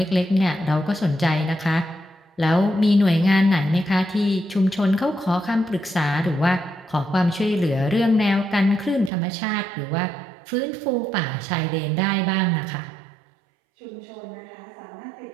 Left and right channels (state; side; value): drops out; left; at 9.1 s